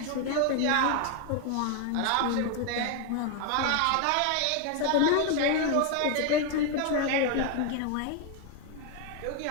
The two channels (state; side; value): different; both; correlation 0.01